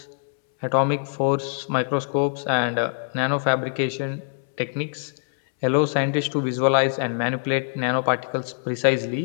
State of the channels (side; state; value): right; silent; 63 dB below the other